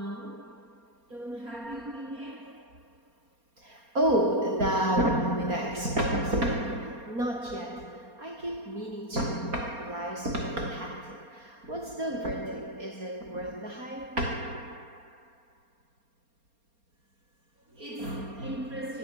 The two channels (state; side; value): late; left; 4.3 ms